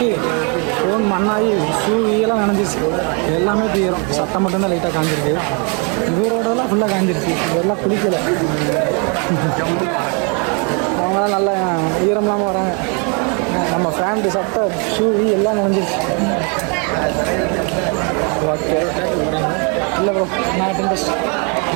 ஃபோன் மண்ணாகி ஷூ-எல்லாம் நனைஞ்சிச்சு. எல்லாமே தீரும். சட்டம் மட்டும்தான் லைட்டாக காஞ்சிருக்கு. இவரோடலாம் ஃபுல்லாக காஞ்சிருச்சு. இதெல்லாம் குளிக்கலை. அவங்களாம் நல்லா ஈரம் இல்லாமல் வராங்க. நம்ம ஃபேண்ட்டு, சட்டை, ஷூ எல்லாம் நனைஞ்சிருச்சு. ஓகே, இல்லை ப்ரோ, நாட் இன்ட்ரெஸ்ட்.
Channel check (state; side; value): quieter; left; 35.8 dB